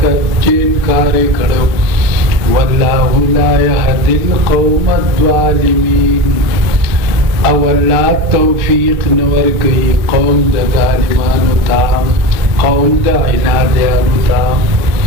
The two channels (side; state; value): left; late; 2.8 ms